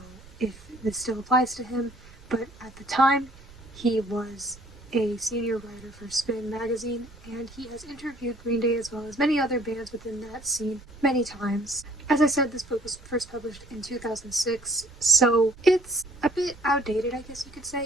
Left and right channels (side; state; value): right; noise; rumble, 22 dB below the sound